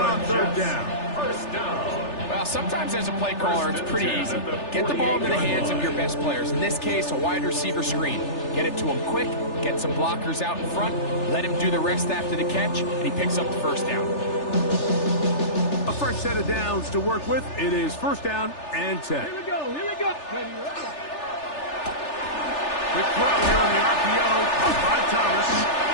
3rd down. Well, sometimes as a play caller, it's pretty easy. Get the ball into the hands of your best players. In this case, a wide receiver screen. Get it to him quick, get some blockers out in front, let him do the rest after the catch, and he picks up the 1st down. A fresh set of downs to work with. It is 1st down and 10. Here we go, here we go. Ready, ready. Quick throw here on the RPO by Thomas.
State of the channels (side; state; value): right; late; 3.4 ms